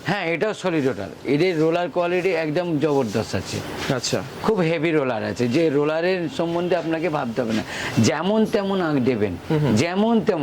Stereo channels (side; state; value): both; identical; correlation 1.00